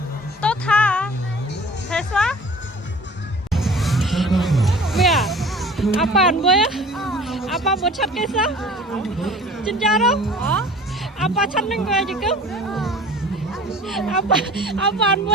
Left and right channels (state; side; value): normal; both; correlation 0.45